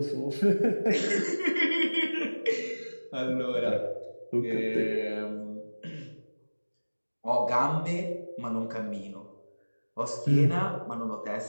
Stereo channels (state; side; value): inverted; both; correlation -1.00